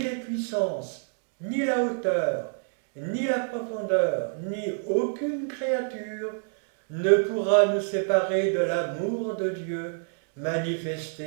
puissances, ni la hauteur, ni la profondeur, ni aucune créature ne pourra nous séparer de l'amour de Dieu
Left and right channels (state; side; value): silent; left; digital silence